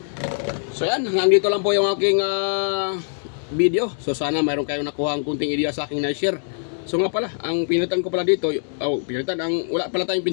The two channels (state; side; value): silent; right; digital silence